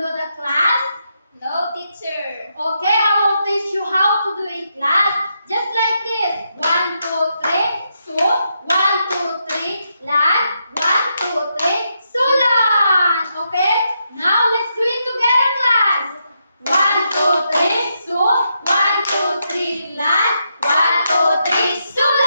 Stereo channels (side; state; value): both; inverted; correlation -0.81